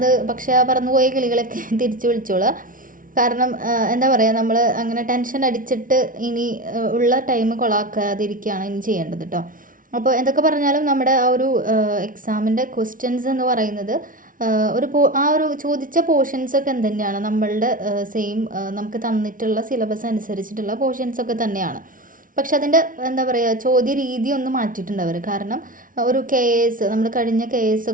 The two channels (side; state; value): left; late; 0.39 ms